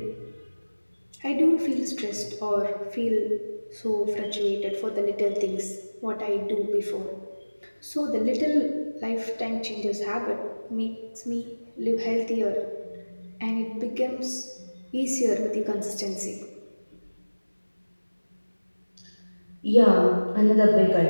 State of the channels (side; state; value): both; inverted; correlation -1.00